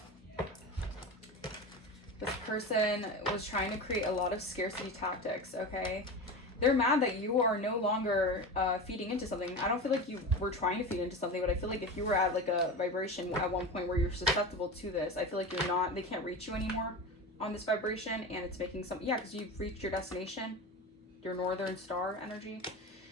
This person was trying to create a lot of scarcity tactics, okay? they're mad that you are no longer feeding into something. I don't feel like you were trying to feed into something, but I feel like if you were at like a vibration at one point where you're susceptible to this, I feel like you're not, they can't reach you anymore on this vibration, and it's making some, yeah, because you've reached your destination, your northern star energy.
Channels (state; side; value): normal; both; correlation 0.27